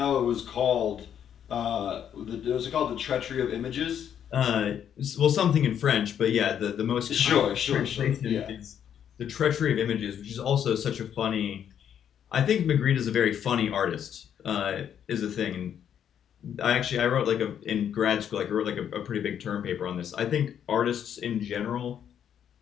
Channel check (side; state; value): right; quieter; 9.1 dB